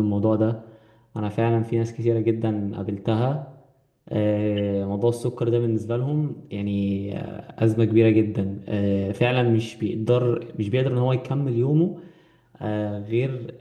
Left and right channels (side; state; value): both; identical; correlation 1.00